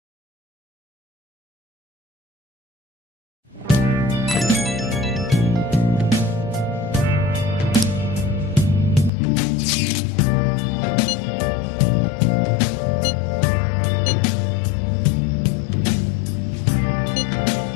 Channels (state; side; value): drops out; right; at 9.1 s